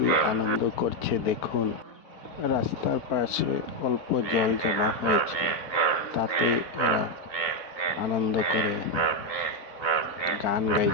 আনন্দ করছে দেখুন। রাস্তার পাশে অল্প জল জমা হয়েছে, তাতেই এরা আনন্দ করে গান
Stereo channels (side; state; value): right; late; 4.0 ms